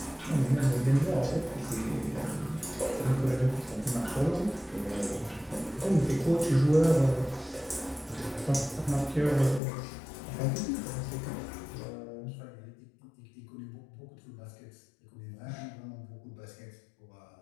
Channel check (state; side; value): drops out; right; at 9.6 s